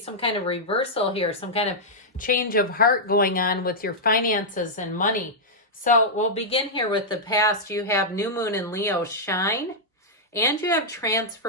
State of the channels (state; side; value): normal; both; correlation -0.08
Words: kind of reversal here, some kind of change of heart going on with your finances and money. So we'll begin here with the past. You have New Moon in Leo, shine, and you have